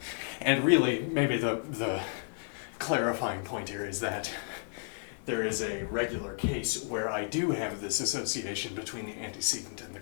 And really, maybe the clarifying point here is that there is a regular case where I do have this association between the antecedent and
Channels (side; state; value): right; silent; digital silence